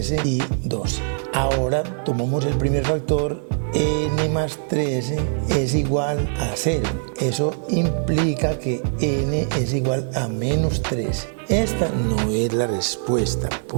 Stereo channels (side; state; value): left; silent; 64 dB below the other